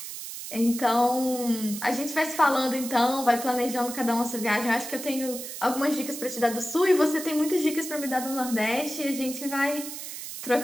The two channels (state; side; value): noise; right; hiss, 9 dB below the sound